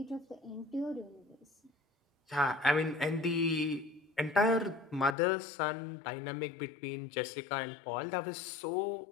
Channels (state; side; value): drops out; right; at 5.2 s